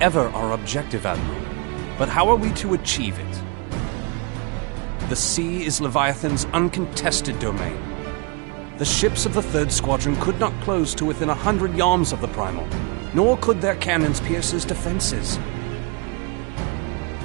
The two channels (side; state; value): left; quieter; 31.5 dB